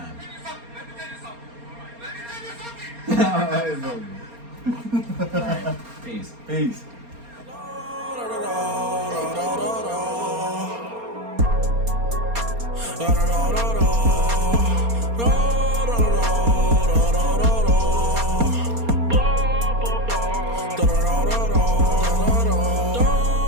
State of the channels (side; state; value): left; late; 4.3 ms